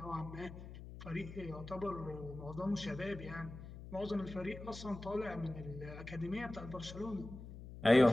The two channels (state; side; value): noise; left; hum, 12 dB below the sound